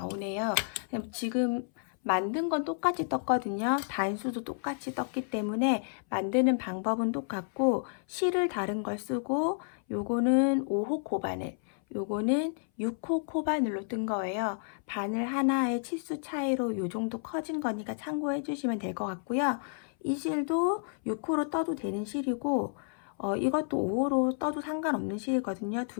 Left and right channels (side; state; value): right; silent; 57 dB below the other